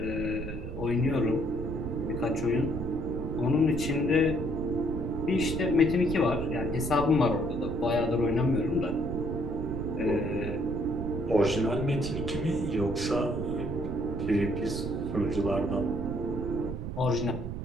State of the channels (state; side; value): noise; right; rumble, 6 dB below the sound